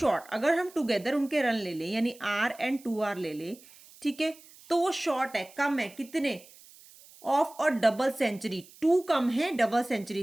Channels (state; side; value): noise; right; hiss, 23 dB below the sound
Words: अगर हम टुगेदर उनके रन ले लें यानी R एंड 2R ले लें, ठीक है, तो वो शॉर्ट है, कम है, कितने, ऑफ और डबल सेंचुरी, 2 कम है डबल सेंचुरी